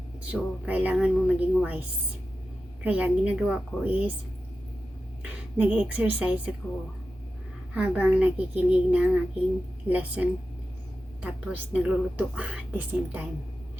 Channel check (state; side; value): normal; both; correlation 0.92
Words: So, kailangan mo maging wise. Kaya, ang ginagawa ko is, nag-exercise ako habang nakikinig ng aking lesson. Tapos, nagluluto at the same time.